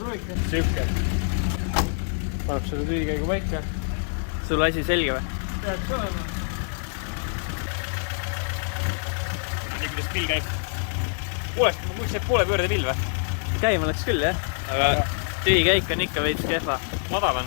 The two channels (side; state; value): right; silent; 61 dB below the other